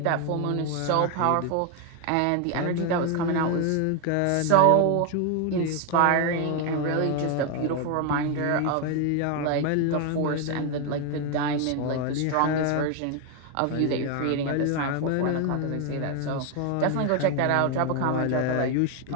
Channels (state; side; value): different; both; correlation 0.01